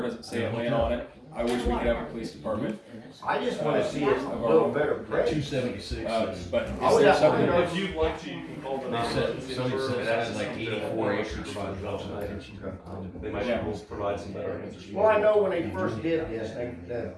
doesn't say Atlanta on it. I wish we could have a police department. I just wanna see it a little better present. 276. But I is would there have- something? If you'd like to, you can call the. They said, somebody said that's like 84 acres. They might be able to provide some better answers. Well, I know when they first did this,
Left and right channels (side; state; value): both; identical; correlation 1.00